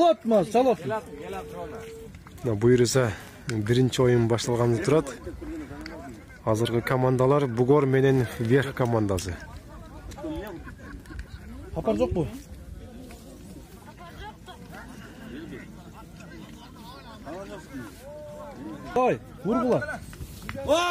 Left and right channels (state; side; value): identical; both; correlation 1.00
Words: çalat. Буйрса биринчи оюн башталганы турат. Азыркы командалар Бугор менен Верх командасы. Хапар жок бу? Давай, вургула.